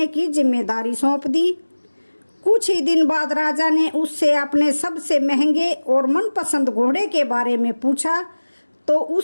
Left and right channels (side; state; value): both; inverted; correlation -1.00